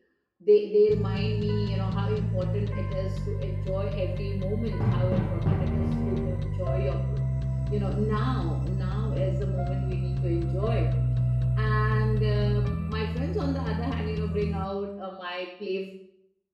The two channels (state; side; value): identical; both; correlation 1.00